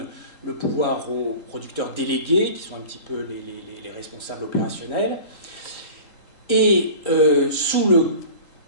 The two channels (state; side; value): late; right; 3.8 ms